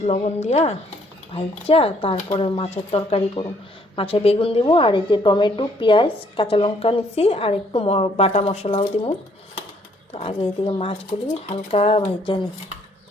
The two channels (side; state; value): both; normal; correlation 0.66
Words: লবণ দিয়া ভাইজা তারপরে মাছের তরকারি করুন। মাছে বেগুন দিব, আর এই যে টমেটো, পেঁয়াজ, কাঁচা লঙ্কা নিছি, আর একটু বাটা মশলাও দিব। তো আগে এদিকে মাছগুলি হালকা ভাইজা নিই।